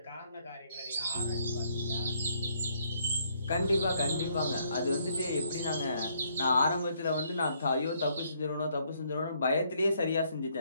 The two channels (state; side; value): inverted; both; correlation -0.69